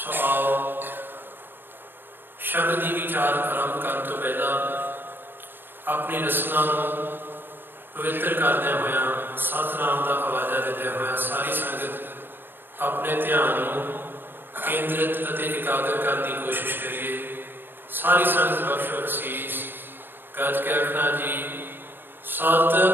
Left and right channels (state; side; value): late; left; 0.099 ms